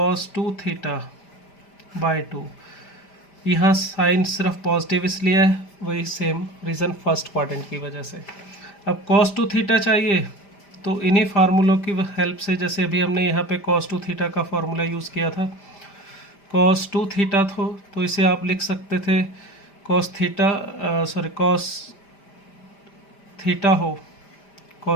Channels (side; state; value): right; late; 5.0 ms